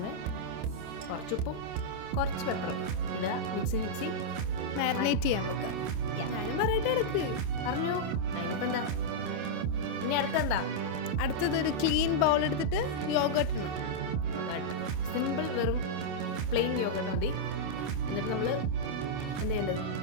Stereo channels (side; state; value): left; late; 27 ms